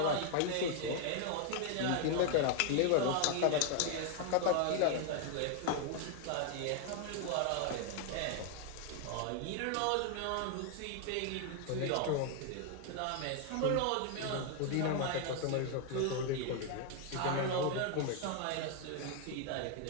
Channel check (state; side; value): different; both; correlation 0.00